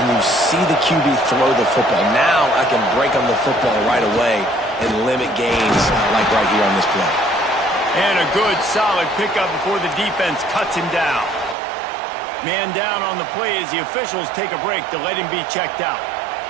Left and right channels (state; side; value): drops out; left; at 11.6 s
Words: you see the QB throw the football. Now I can break on the football right away and limit gains like right here on this play. And a good, solid pickup before the defense cuts him down. Man down on the play as the officials take a break to let him be checked out.